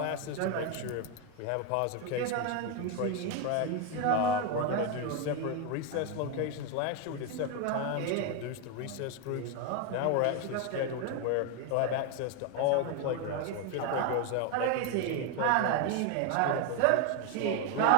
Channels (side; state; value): both; different; correlation 0.01